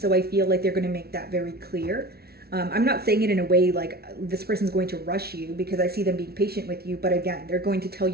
I feel like they're going to make that very clear. I'm not saying it in a way like this person's going to rush you, because I see them being patient with you. But again, they're going to tell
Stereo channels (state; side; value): late; left; 0.45 ms